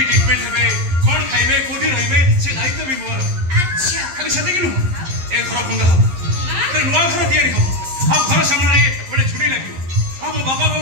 ट्रीटमेंट हेबे कौन खाइबे कोठी रहिबे से दायित्व भी मोर अच्छा खाली सते किनु ए घर भंगा हो ते नुआ घर तयारी हो अब घर सामने रे बड़े छुरी लागियो अब बाबा को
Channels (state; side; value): late; left; 11 ms